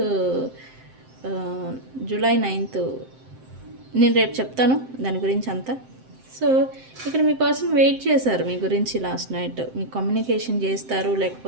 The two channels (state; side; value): late; left; 7.7 ms